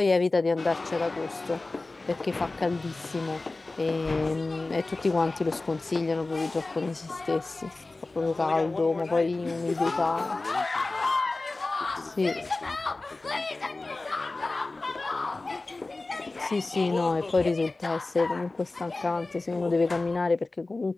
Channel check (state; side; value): quieter; right; 3.2 dB